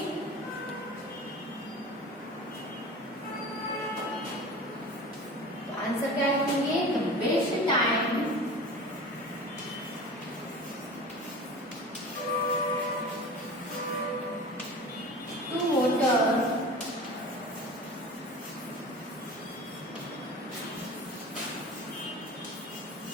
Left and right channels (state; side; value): normal; both; correlation 0.36